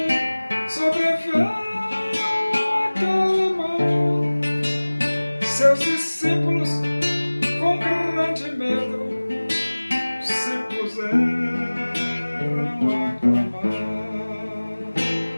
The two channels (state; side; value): inverted; both; correlation -1.00